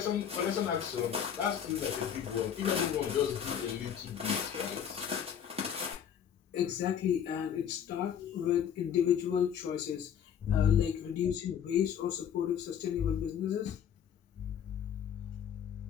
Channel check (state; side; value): quieter; right; 8.6 dB